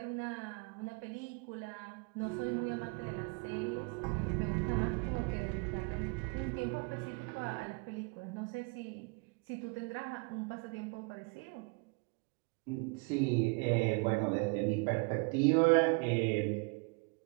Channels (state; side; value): quieter; left; 32.2 dB